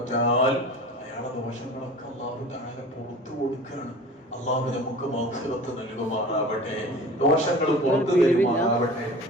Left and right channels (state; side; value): normal; both; correlation 0.39